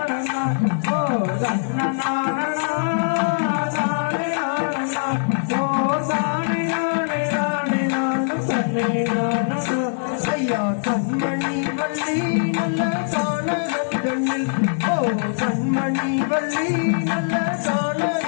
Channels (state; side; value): silent; right; digital silence